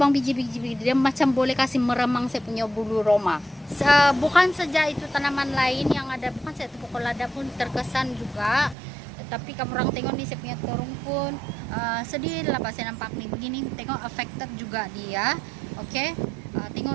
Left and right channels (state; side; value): drops out; left; at 8.8 s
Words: biji-biji dia macam boleh kasih meremang saya punya bulu roma. Bukan saja itu tanaman lain yang ada, bukan saya pokok lada pun terkesan juga. Tapi kamu orang tengok nih saya punya terung pun sedih lah pas saya nampak nih begini. Tengok affected juga dia. Oke.